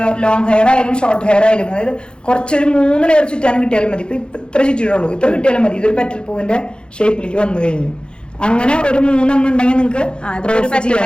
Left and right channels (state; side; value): late; right; 0.052 ms